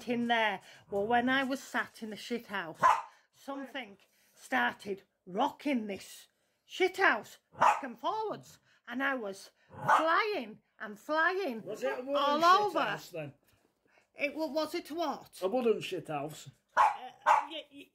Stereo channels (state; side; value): identical; both; correlation 1.00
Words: in there. Well, when I was sat in the shithouse, something started rocking this shithouse back and forwards, and I was flying and flying. Was it a wooden all over? Shithouse then? Was it what? A wooden shithouse.